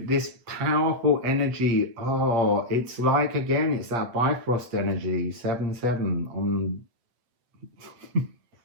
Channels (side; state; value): left; late; 8.3 ms